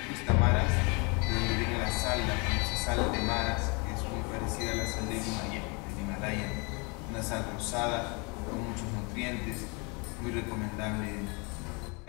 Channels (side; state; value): right; quieter; 30.8 dB